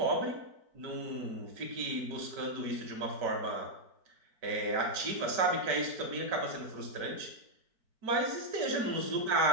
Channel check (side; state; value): left; late; 4.5 ms